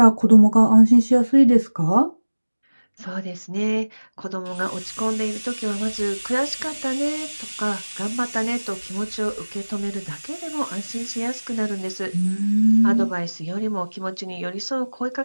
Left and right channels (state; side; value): inverted; both; correlation -1.00